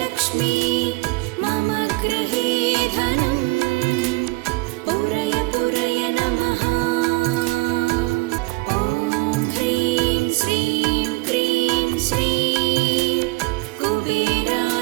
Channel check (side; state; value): left; quieter; 24.4 dB